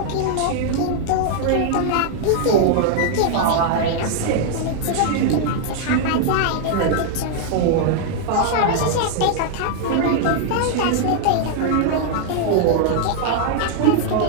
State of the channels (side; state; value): both; different; correlation -0.01